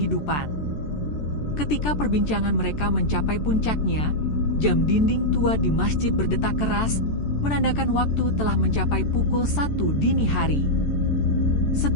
Ketika perbincangan mereka mencapai puncaknya, jam dinding tua di masjid berdetak keras, menandakan waktu telah mencapai pukul 1 dini hari.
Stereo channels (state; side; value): late; right; 14 ms